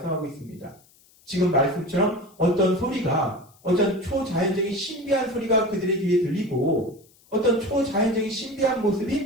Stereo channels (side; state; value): left; noise; hiss, 30 dB below the sound